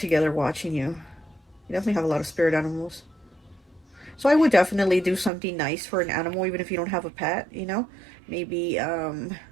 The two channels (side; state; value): left; drops out; at 5.3 s